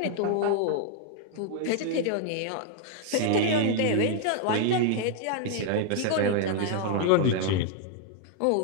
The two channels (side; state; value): both; different; correlation 0.00